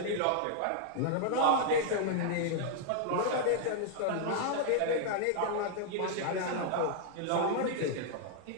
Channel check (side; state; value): both; different; correlation -0.01